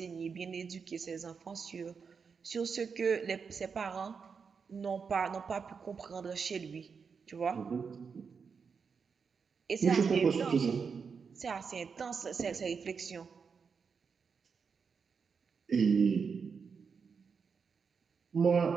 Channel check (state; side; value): quieter; left; 5.8 dB